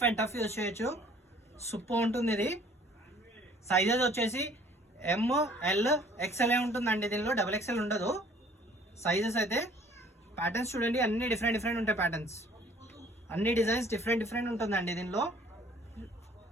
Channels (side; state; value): both; normal; correlation 0.56